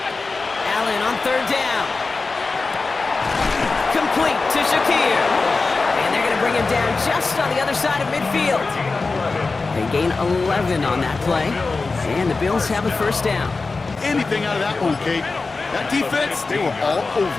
Allen on third down. Complete to Shakir. And they're going to bring him down just on the other side of midfield. They gain 11 on that play. And the Bills have a first down. Anything out of that one, Kate. That defense, they were all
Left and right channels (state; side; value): quieter; right; 3.9 dB